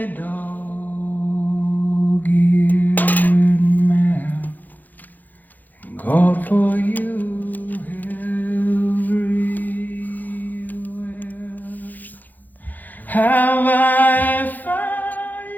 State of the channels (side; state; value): right; late; 0.084 ms